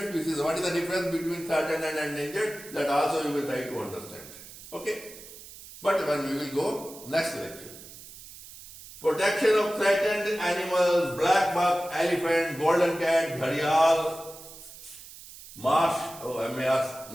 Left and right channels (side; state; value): right; noise; hiss, 17 dB below the sound